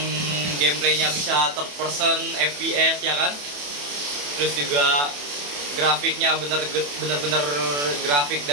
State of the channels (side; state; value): left; late; 28 ms